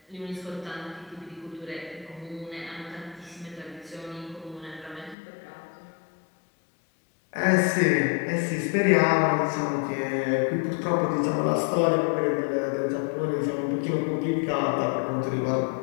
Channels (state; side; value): drops out; right; at 5.2 s